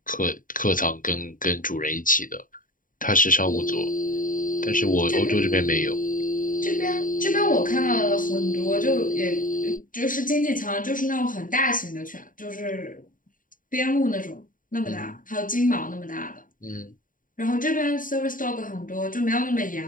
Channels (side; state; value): right; late; 0.39 ms